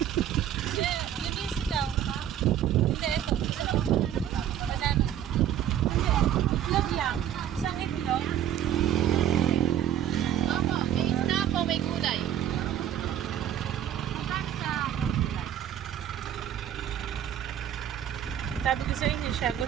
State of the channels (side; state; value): left; quieter; 10.5 dB